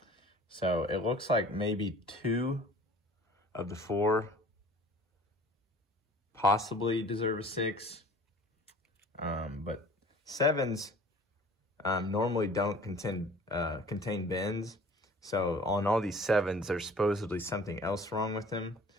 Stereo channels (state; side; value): normal; both; correlation 0.48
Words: So it looks like maybe 2 of the 4 possibly deserve a 6. But 7s normally don't contain bends. So on all these 7s, there's supposedly something else wrong with them.